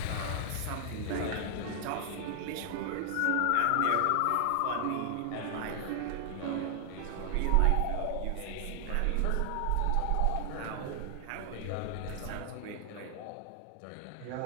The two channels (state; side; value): different; both; correlation 0.00